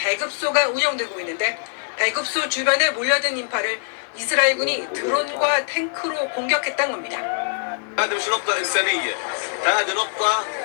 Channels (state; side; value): silent; right; digital silence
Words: 운영되고 있는데 배급소 주변에 몰려든 인파를 이스라엘군이 드론과 탱크로 공격했다는 겁니다. هذا مش نقطة إنسانية، هذه نقطة